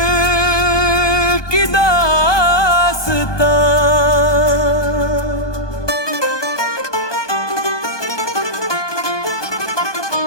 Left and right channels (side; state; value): right; late; 1.2 ms